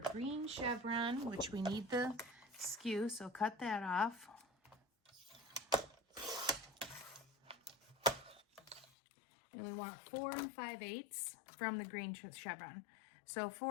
green chevron, which we need the skew, so cut that off. And we want 4 5/8 from the green chevron. So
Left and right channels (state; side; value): drops out; right; at 8.9 s